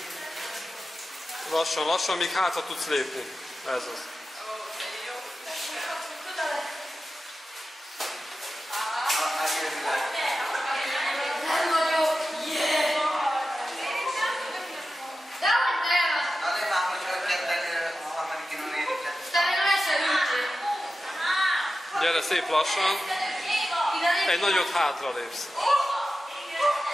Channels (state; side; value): normal; both; correlation 0.92